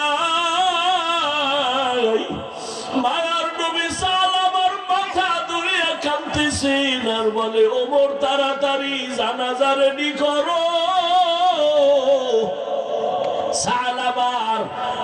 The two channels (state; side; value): identical; both; correlation 1.00